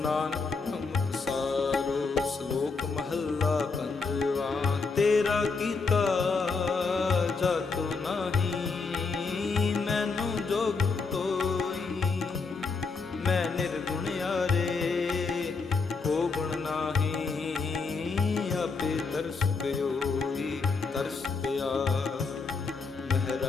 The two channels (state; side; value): quieter; right; 4.5 dB